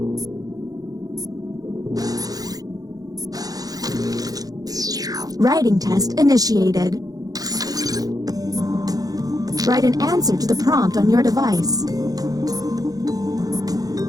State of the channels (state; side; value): late; left; 0.18 ms